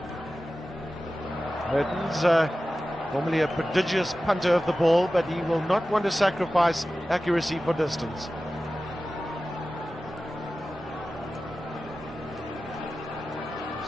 He's probably a prodigious punter of the ball, but he will not want to sacrifice accuracy for distance.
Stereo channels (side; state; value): both; normal; correlation 0.95